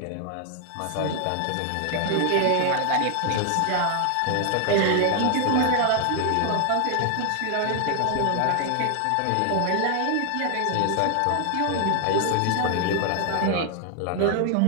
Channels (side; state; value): both; different; correlation 0.00